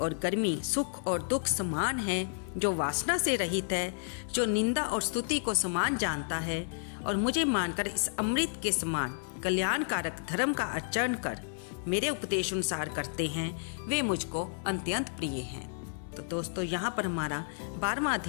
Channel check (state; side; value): silent; right; digital silence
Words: गर्मी, सुख और दुख समान है, जो वासना से रहित है, जो निंदा और स्तुति को समान जानता है, और मुझे मानकर इस अमृत के समान कल्याणकारक धर्म का आचरण कर मेरे उपदेश अनुसार करते हैं, वे मुझको अत्यंत प्रिय हैं। तो दोस्तों, यहाँ पर हमारा 12वां